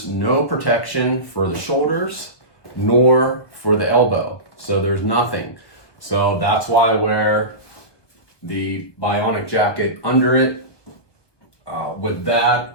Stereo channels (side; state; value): right; late; 1.2 ms